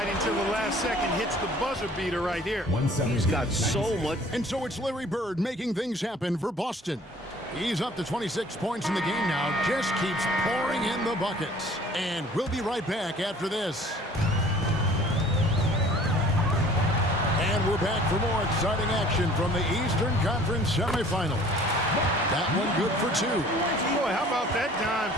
till the last second, hits the buzzer beater right here. He's got so much. And so it's Larry Bird making things happen for Boston. He's up to 26 points in the game now, just keeps pouring in the buckets. And we'll be right back after this. And we're back for more exciting action from the Eastern Conference semifinal. That one good for two. Boy, how about that dime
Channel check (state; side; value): normal; both; correlation 0.51